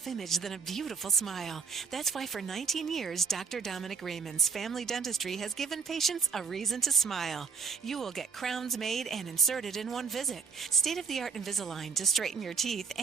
than a beautiful smile. That's why for 19 years, Dr. Dominic Raymond's Family Dentistry has given patients a reason to smile. You will get crowns made and inserted in one visit. State-of-the-art Invisalign to straighten your teeth,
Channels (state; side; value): quieter; left; 5.6 dB